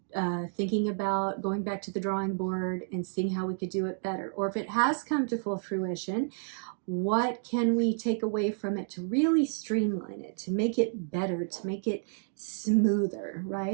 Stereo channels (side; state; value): left; silent; 57 dB below the other